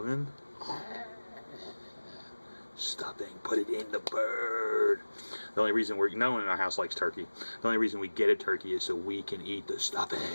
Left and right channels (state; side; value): inverted; both; correlation -1.00